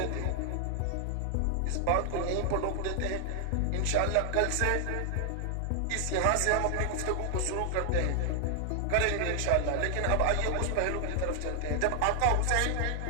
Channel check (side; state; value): both; different; correlation 0.00